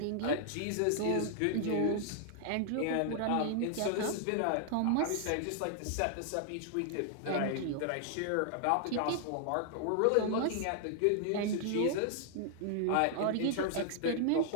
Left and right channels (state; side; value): different; both; correlation 0.00